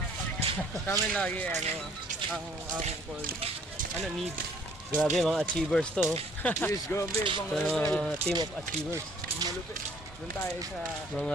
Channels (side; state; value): both; normal; correlation 0.59